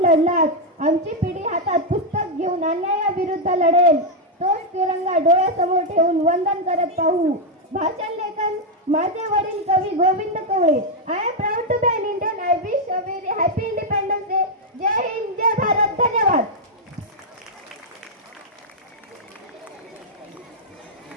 लढलात, आमची पिढी हातात पुस्तक घेऊन अन्यायाविरुद्ध लढेल. तोच तिरंगा डोळ्यासमोर ठेवून वंदन करत पाहू. भाषण लेखन माझे वडील कवी Govind Kawale. I am proud to be an Indian. I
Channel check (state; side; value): normal; both; correlation -0.01